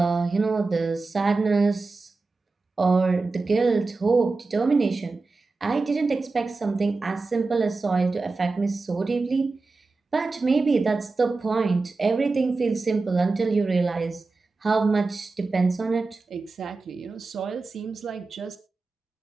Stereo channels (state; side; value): quieter; left; 3.8 dB